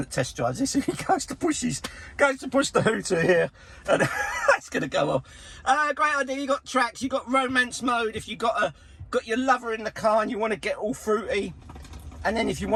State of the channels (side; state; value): both; identical; correlation 1.00